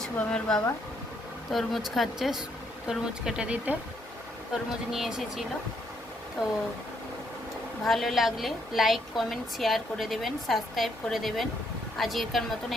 শুভমের বাবা তরমুজ খাচ্ছে, তরমুজ কেটে দিতে তরমুজ নিয়ে এসেছিল। তো ভালো লাগলে লাইক কমেন্ট শেয়ার করে দেবেন, সাবস্ক্রাইব করে দেবেন। আজকের মতন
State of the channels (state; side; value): normal; both; correlation 0.73